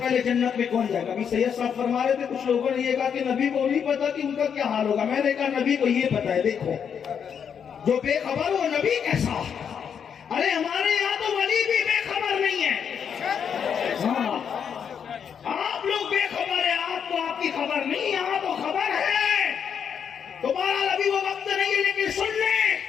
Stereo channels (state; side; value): quieter; right; 7.5 dB